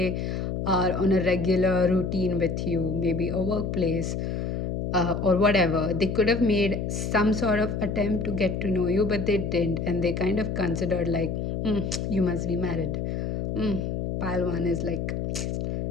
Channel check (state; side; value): noise; left; hum, 2 dB below the sound